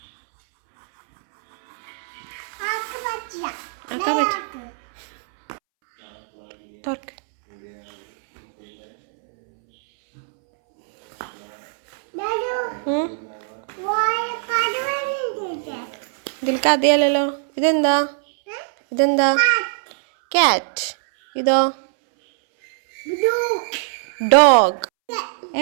ആക്കാൻ പറ്റും തുറക്ക് ഇതിൽ കഥയല്ലോ ഇതെന്താ ഇതെന്താ കാറ്റ് ഇതോ ഡോഗ്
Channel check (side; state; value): left; silent; 65 dB below the other